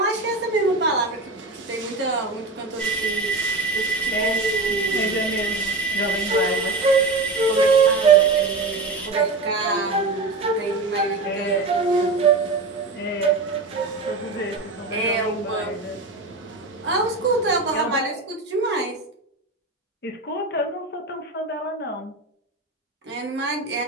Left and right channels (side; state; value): left; quieter; 3.4 dB